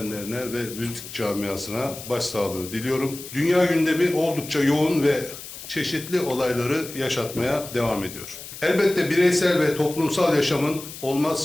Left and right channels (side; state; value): left; noise; hiss, 13 dB below the sound